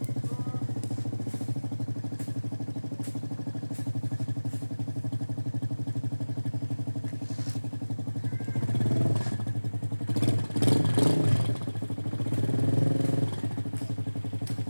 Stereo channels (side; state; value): both; inverted; correlation -1.00